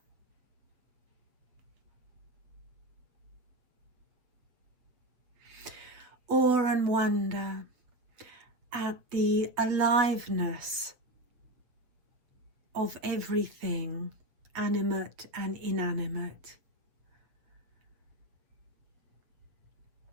Awe and wonder at the aliveness of everything, animate and inanimate.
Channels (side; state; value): left; late; 7.8 ms